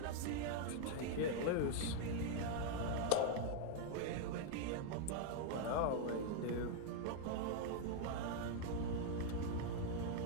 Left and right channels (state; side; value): different; both; correlation 0.00